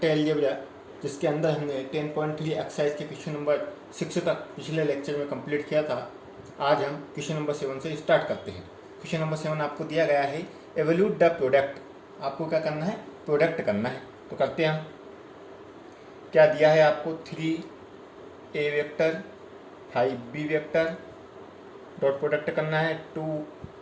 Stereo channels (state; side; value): identical; both; correlation 1.00